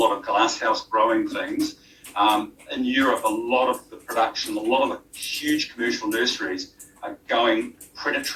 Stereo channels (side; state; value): both; identical; correlation 1.00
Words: of glasshouse growing things, in Europe, a lot of the production, a lot of the huge commercial nurseries are going